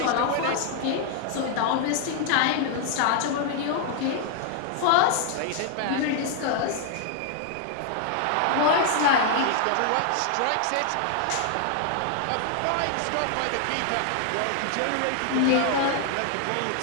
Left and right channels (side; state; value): both; different; correlation 0.00